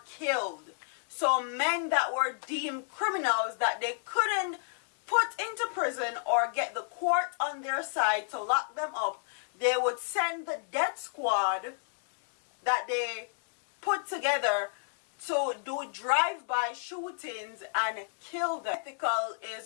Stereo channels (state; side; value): silent; right; 56 dB below the other